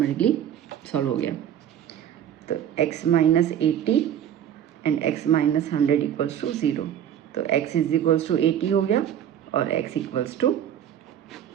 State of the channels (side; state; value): left; quieter; 9.9 dB